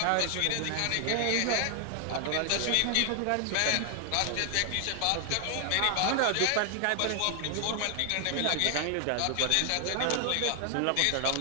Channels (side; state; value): both; different; correlation 0.00